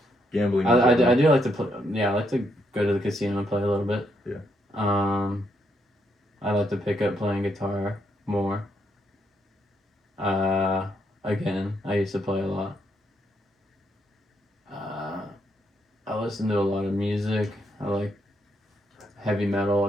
Gambling. I do like to play. Yeah, I like to go to the casino and play a little bit. Yeah. I like to pick up playing guitar more. Again, I used to play a lot. I listen to a lot of music. I like heavy metal,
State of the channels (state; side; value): normal; both; correlation 0.77